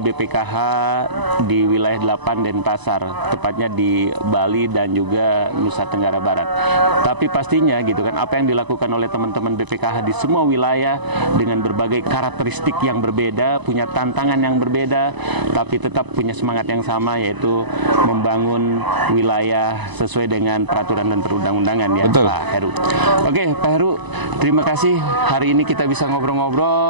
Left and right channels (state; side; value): late; left; 1.0 ms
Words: di wilayah 8 Denpasar, tepatnya di Bali dan juga Nusa Tenggara Barat. Tapi pastinya gitu kan, apa yang dilakukan oleh teman-teman BPKH di semua wilayah dengan berbagai karakteristik yang berbeda, punya tantangan yang berbeda, tapi tetap punya semangat yang sama, yaitu membangun wilayah sesuai dengan peraturan dan perundang-undangan ya. Betul. Pak Heru. Oke, Pak Heru, terima kasih hari ini kita bisa